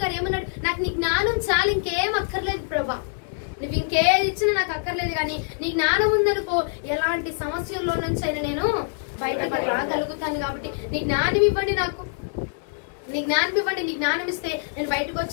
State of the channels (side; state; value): right; silent; 62 dB below the other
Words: గారు ఏమన్నాడు, నాకు నీ జ్ఞానం చాలు, ఇంకేం అక్కర్లేదు ప్రభా, నువ్వు ఇంకేది ఇచ్చినా నాకు అక్కర్లేదు, కానీ నీ జ్ఞానం ఉందనుకో ఎలాంటి సమస్యల్లో నుంచి అయినా నేను బయటకు రాగలుగుతాను. కాబట్టి నీ జ్ఞానం ఇవ్వండి, నాకు నీ జ్ఞానం ఇవ్వండి. నీ జ్ఞానం ఇస్తే నేను బయటకు